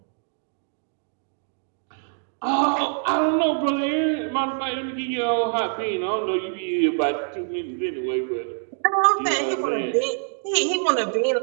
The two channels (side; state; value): left; silent; 62 dB below the other